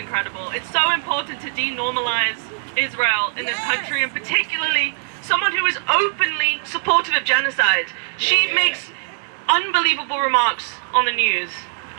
It's so important to denormalize Israel in this country, and particularly someone who is openly supportive of genocide. She makes unbelievable remarks on the news,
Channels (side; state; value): left; silent; digital silence